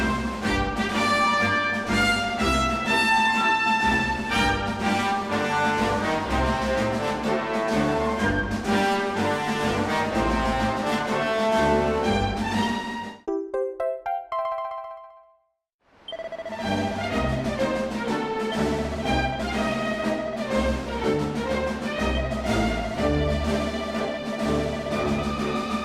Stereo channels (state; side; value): identical; both; correlation 1.00